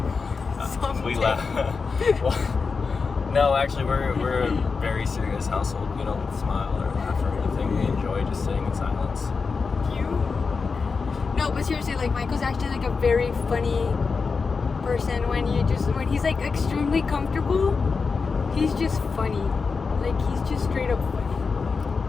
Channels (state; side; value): quieter; right; 4.9 dB